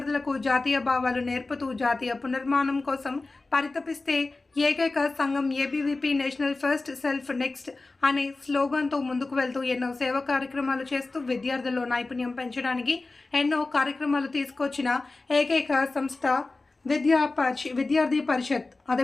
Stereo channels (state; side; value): quieter; right; 3.4 dB